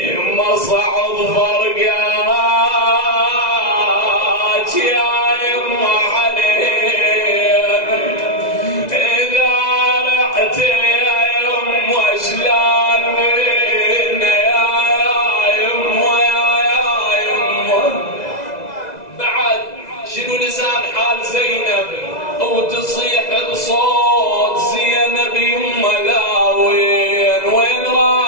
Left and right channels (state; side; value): late; right; 2.0 ms